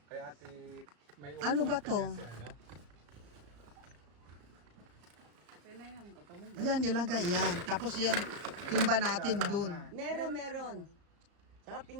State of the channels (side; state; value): left; late; 34 ms